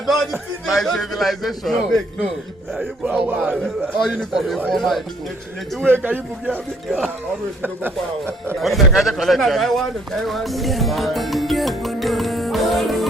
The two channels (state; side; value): normal; both; correlation 0.63